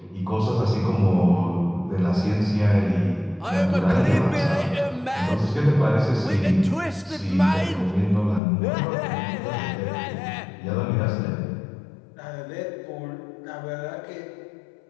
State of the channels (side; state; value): right; drops out; at 8.4 s